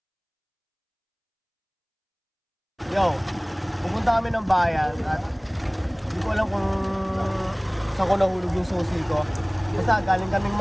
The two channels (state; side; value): identical; both; correlation 1.00